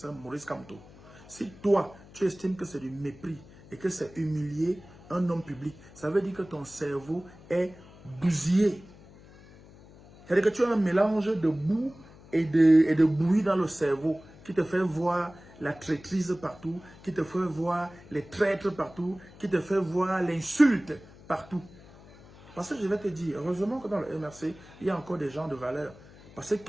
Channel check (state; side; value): noise; left; hum, 22 dB below the sound